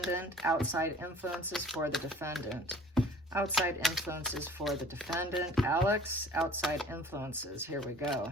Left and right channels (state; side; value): normal; both; correlation 0.48